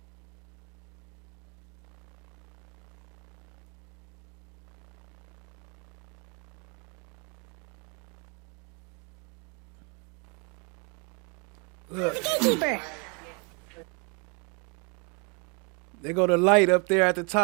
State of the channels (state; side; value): quieter; left; 33.8 dB